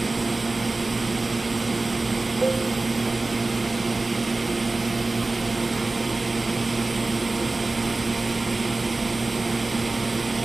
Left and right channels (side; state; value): left; quieter; 3.2 dB